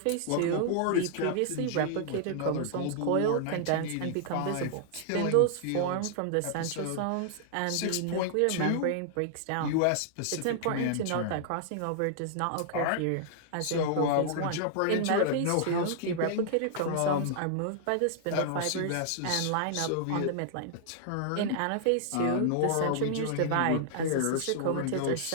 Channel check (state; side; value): different; both; correlation -0.01